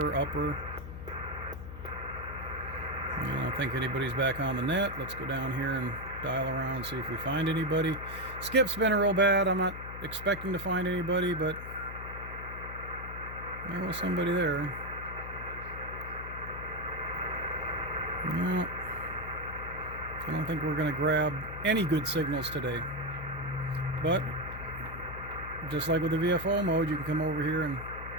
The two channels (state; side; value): noise; left; hum, 10 dB below the sound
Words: upper. I don't think anybody's back on the net. Let's go down here and dial around, see if we find anybody. Skip's been real bad. I'm not expecting to find anybody, but there was somebody there. No, I don't think we're going to grab any good signals today. But just like with the VFO mode, you can come over here and